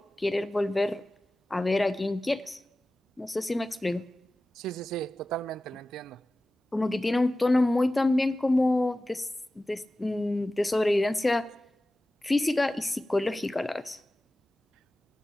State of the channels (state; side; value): normal; both; correlation 0.96